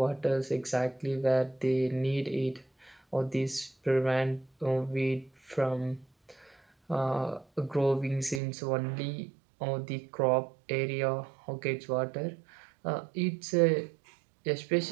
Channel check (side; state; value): left; drops out; at 8.4 s